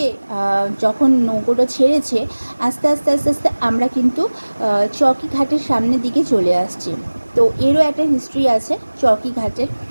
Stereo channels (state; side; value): inverted; both; correlation -1.00